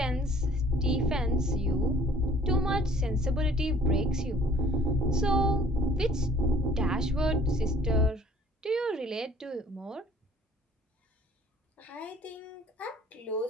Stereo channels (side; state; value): both; normal; correlation 0.56